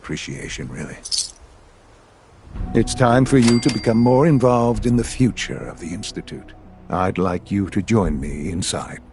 really. It's time for you to become more involved in the future of the Institute. I'd like you to join me inside.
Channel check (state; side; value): identical; both; correlation 1.00